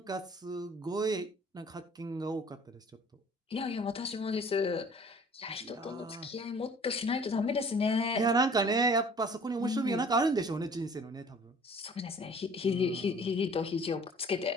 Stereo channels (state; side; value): normal; both; correlation 0.51